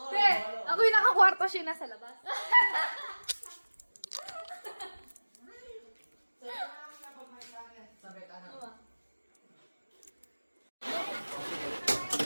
Te, ako yung nakakwarto, siya nasa labas.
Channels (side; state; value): both; inverted; correlation -1.00